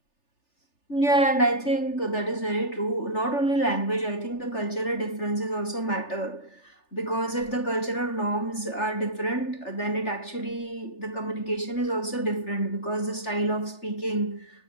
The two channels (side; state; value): right; late; 3.4 ms